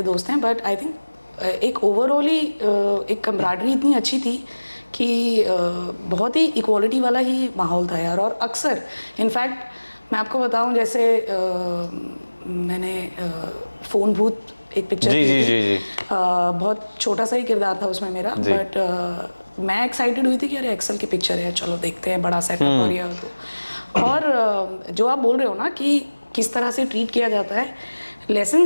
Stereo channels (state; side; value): inverted; both; correlation -1.00